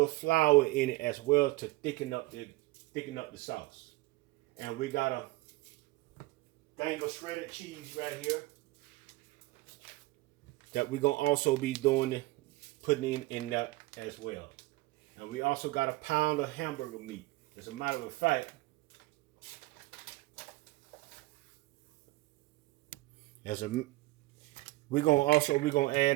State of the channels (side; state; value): left; quieter; 20.6 dB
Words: flour in it as well to thicken up the sauce. And we got a thing of shredded cheese right here that we're gonna also be putting in that as well. And we also got a pound of hamburger meat. As a matter of fact, we're gonna